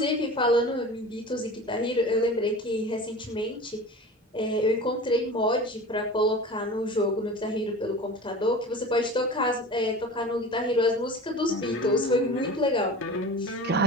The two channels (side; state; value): both; normal; correlation 0.36